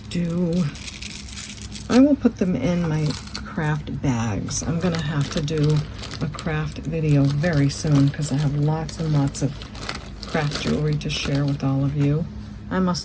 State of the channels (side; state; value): both; identical; correlation 1.00